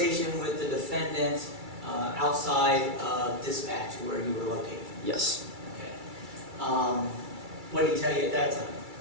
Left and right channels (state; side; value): late; left; 2.3 ms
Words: with the defendant outside of dispatch where you were located? Yes. Okay. What did he tell you at that time?